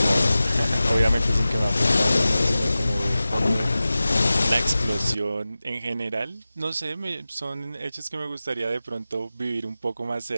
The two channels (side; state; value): both; inverted; correlation -0.95